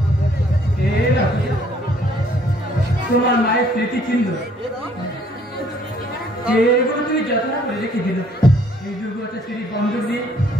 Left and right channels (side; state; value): both; normal; correlation 0.62